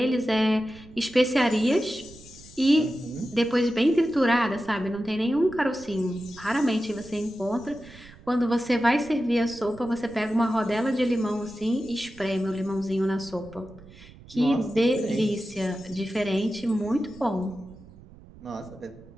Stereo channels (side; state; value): right; noise; rumble, 21 dB below the sound